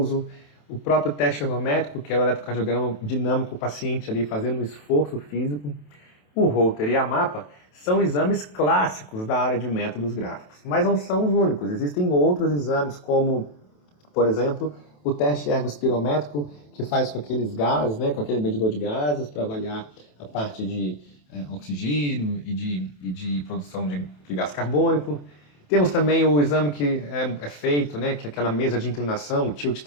o próprio teste ergométrico, que é o eletrocardiograma dinâmico, o paciente ali fazendo um esforço físico, o Holter e a MAPA são exames clássicos da área de métodos gráficos, mas não são os únicos. Existem outros exames, como, por exemplo, o teste ergospirométrico, que faz com aqueles gases, né, com aquele medidor de gases, para avaliar a parte de oxigênio e de produção de gás carbônico. Temos também o exame que é feito, né, que é aquela mesa de inclinação, o tilt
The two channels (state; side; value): late; right; 27 ms